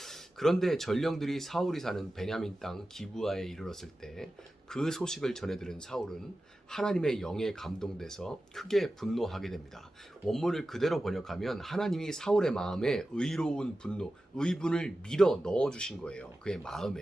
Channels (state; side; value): normal; both; correlation 0.94